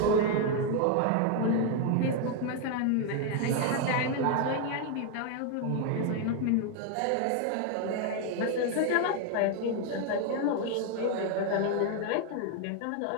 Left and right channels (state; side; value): different; both; correlation 0.01